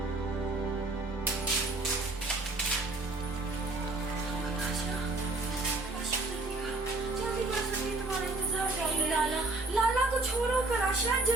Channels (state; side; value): quieter; left; 3.1 dB